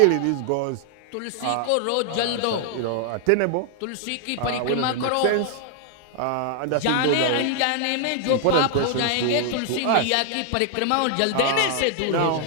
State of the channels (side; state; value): both; different; correlation 0.00